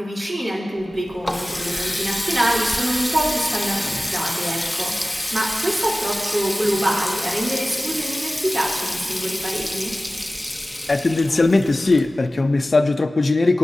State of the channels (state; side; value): normal; both; correlation 0.97